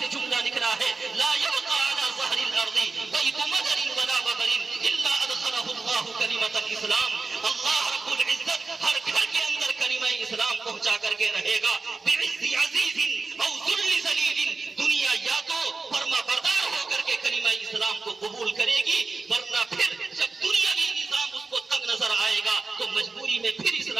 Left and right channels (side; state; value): left; quieter; 4.0 dB